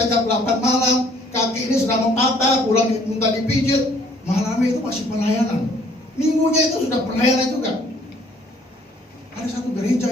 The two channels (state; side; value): normal; both; correlation 0.60